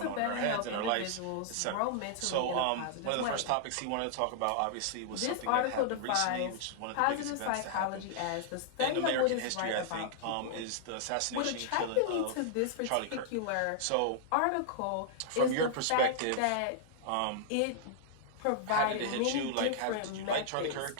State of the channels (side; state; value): both; different; correlation -0.01